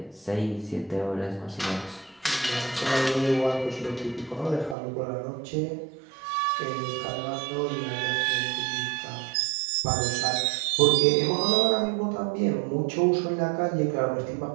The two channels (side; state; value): left; drops out; at 4.8 s